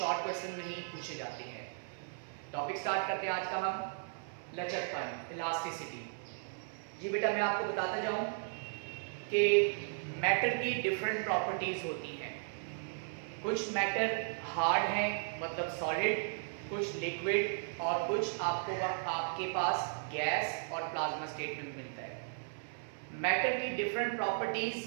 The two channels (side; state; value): left; silent; 54 dB below the other